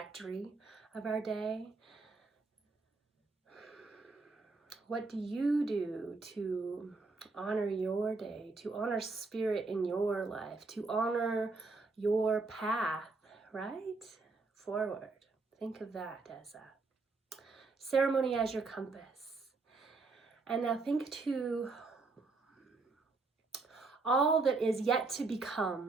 of our day. What do you do to honor your day, to honor spirit in your life, to honor your path, right? Forward. Think of that as a ceremony as your compass. And now think to all that is yet to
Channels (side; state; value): left; quieter; 3.8 dB